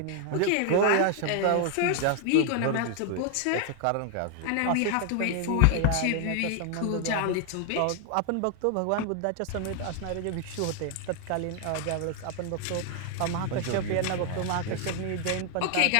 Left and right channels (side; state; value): both; different; correlation 0.00